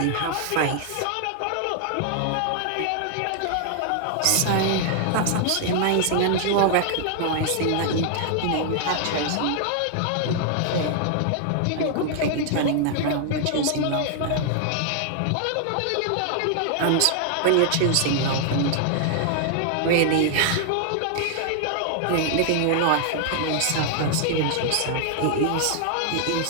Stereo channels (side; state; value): both; different; correlation 0.00